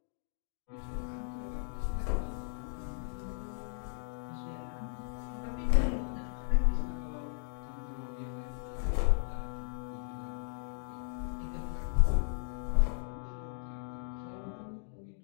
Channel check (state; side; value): silent; right; digital silence